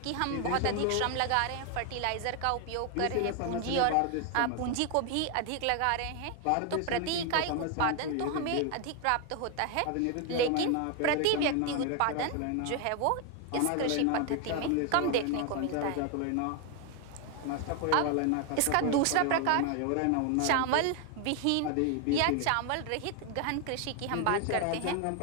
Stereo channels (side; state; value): both; different; correlation 0.01